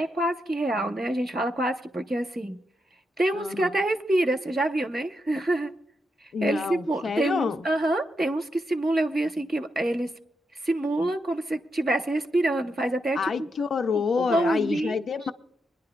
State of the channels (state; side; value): normal; both; correlation 0.83